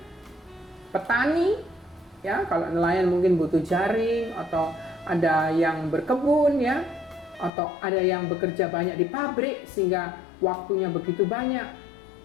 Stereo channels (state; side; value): drops out; right; at 7.5 s